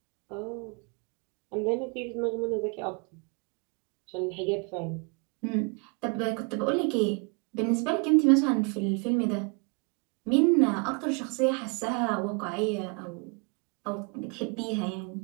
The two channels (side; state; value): left; quieter; 33.2 dB